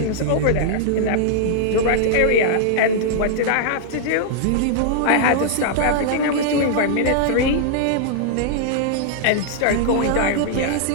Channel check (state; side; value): different; both; correlation -0.01